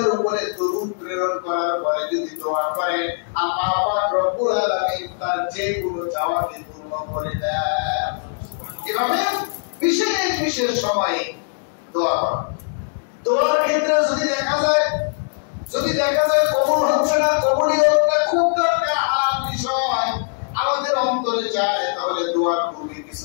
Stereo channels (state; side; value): silent; right; digital silence